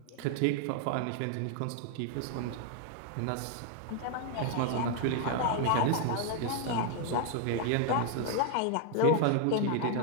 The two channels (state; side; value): different; both; correlation 0.01